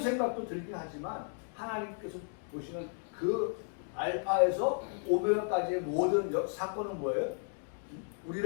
들긴 하지만 하나님께서 보시는 그 알파에서 오메가까지의 모든 사건은 뭐예요?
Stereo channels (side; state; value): right; silent; 55 dB below the other